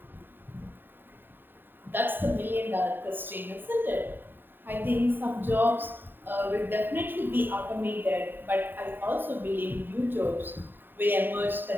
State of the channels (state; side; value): late; left; 0.094 ms